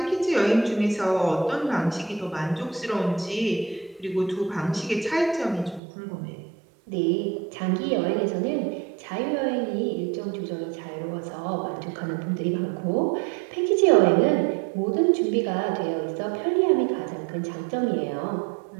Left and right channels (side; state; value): left; drops out; at 5.8 s